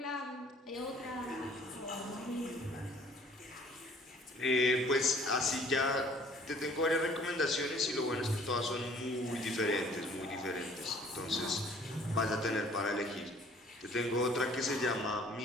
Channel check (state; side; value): normal; both; correlation 0.56